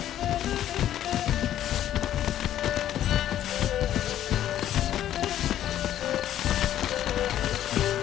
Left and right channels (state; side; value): quieter; right; 11.7 dB